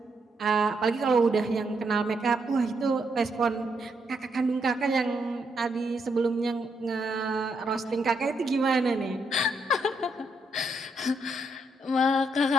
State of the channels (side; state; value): both; normal; correlation 0.77